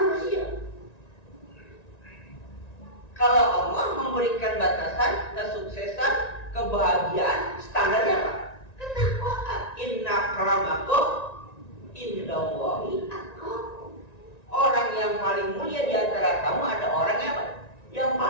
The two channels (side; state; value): right; late; 1.9 ms